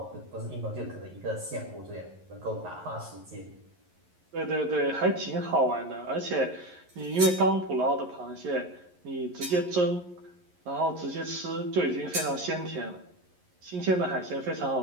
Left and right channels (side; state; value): left; late; 11 ms